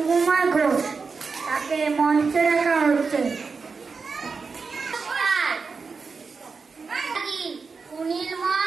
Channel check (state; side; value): quieter; left; 4.9 dB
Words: ঘোষ তাকে মঞ্চে রাখা হচ্ছে।